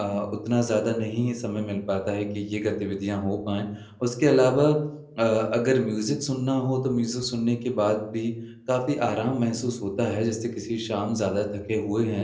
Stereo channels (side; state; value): both; identical; correlation 1.00